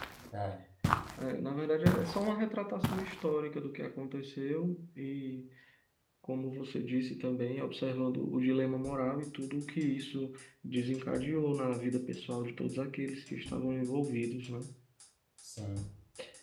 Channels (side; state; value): both; identical; correlation 1.00